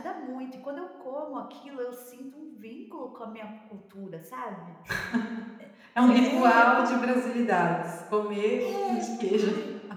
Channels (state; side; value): identical; both; correlation 1.00